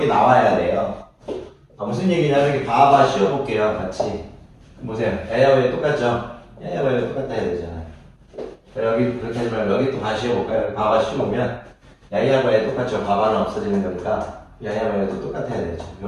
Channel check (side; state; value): both; identical; correlation 1.00